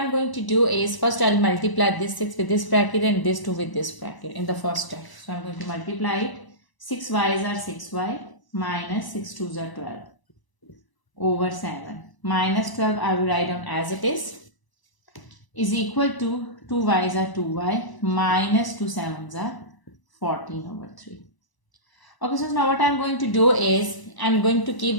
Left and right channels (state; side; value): late; right; 1.0 ms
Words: going to do is first I'll multiply this 6 with this bracket and this 2 with this bracket in the first step. So I'm going to multiply it. 6 y's are 6y minus 6 2's are 12 over 7 minus 12 I will write down as it is equal to 2 y's are 2y minus 2 7's are 14 over 3. Okay, so now what I'm going to do is I'm going to keep